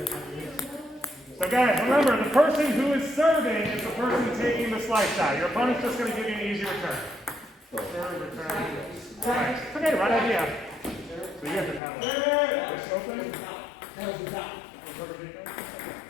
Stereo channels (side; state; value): right; drops out; at 11.8 s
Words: So guys, remember, the person who is serving is the person taking the slice shot. Your opponent's just going to give you an easy return. Serve, return, slice. Okay, right idea. So you have the paddle. This open.